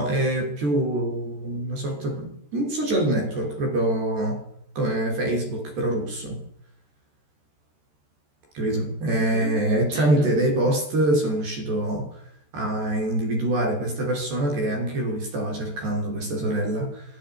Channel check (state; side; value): late; left; 14 ms